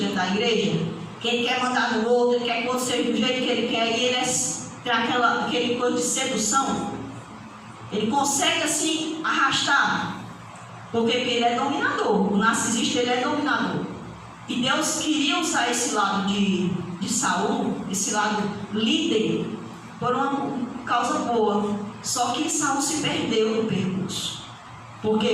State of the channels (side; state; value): both; identical; correlation 1.00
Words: da igreja, que ele quer mandar no outro, ele quer que o outro seja do jeito que ele quer, e ele tem aquele coisa de sedução. Ele consegue assim arrastar, porque ele é dominador. O narcisista, ele é dominador. E Deus queria usar esse lado de Saul, esse lado líder, por uma causa boa. Só que Saul se perdeu no percurso. Por quê?